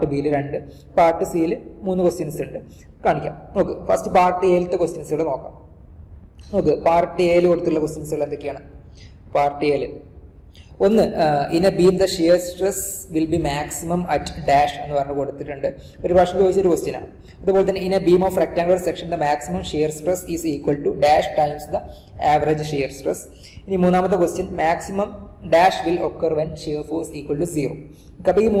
ബിയിൽ 2, പാർട്ട് സിയിൽ 3 ക്വസ്റ്റ്യൻസ് ഉണ്ട്. കാണിക്കാം. നോക്ക്, ഫസ്റ്റ് പാർട്ട് എയിലത്തെ ക്വസ്റ്റ്യൻസുകൾ നോക്കാം. നോക്ക്, പാർട്ട് എയിൽ കൊടുത്തുള്ള ക്വസ്റ്റ്യൻസുകൾ എന്തൊക്കെയാണ്? പാർട്ട് എയിൽ ഒന്ന്, in a beam the shear stress will be maximum at dash എന്ന് പറഞ്ഞ് കൊടുത്തിട്ടുണ്ട്. ഒരു പ്രാവശ്യം ചോദിച്ചൊരു ക്വസ്റ്റ്യൻ ആണ്. അതുപോലെ തന്നെ in a beam of rectangular section the maximum shear stress is equal to dash times the average shear stress. ഇനി മൂന്നാമത്തെ question, maximum dash will occur when shear force equal to 0. അപ്പോൾ ഈ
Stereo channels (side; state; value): both; identical; correlation 1.00